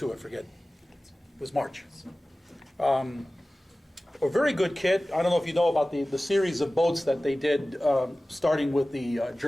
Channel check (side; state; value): both; normal; correlation 0.97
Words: I forget. It was March. A very good kit. I don't know if you know about the series of boats that they did, starting with the